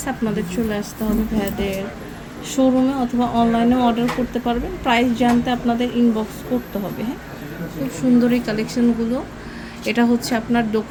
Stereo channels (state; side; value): identical; both; correlation 1.00